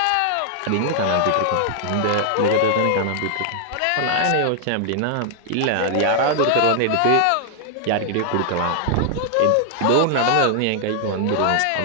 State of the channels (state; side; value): different; both; correlation 0.00